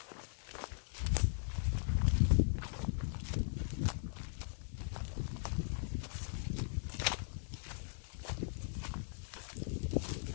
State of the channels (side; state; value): right; silent; digital silence